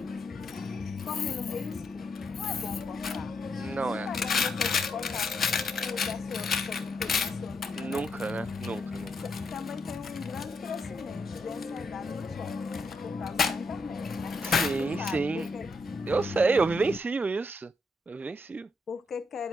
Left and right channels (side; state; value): both; normal; correlation 0.79